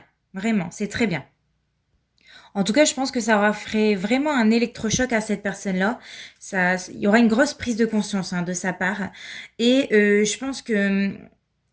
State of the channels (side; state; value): both; identical; correlation 1.00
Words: Vraiment, c'est très bien. En tout cas, je pense que ça aura fait vraiment un électrochoc à cette personne-là. Il y aura une grosse prise de conscience hein, de sa part. Et je pense que